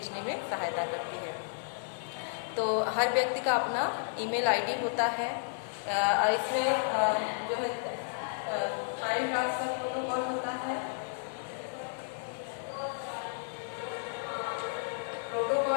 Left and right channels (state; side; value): silent; right; digital silence